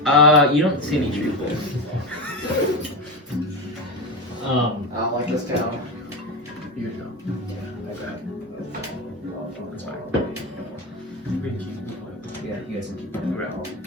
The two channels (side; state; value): both; normal; correlation 0.19